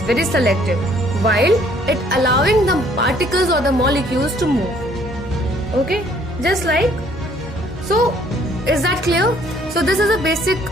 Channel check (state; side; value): normal; both; correlation 0.61